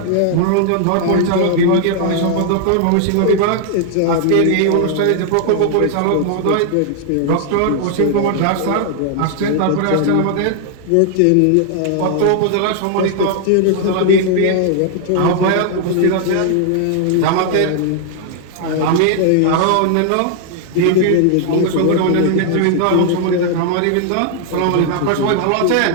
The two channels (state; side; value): different; both; correlation 0.00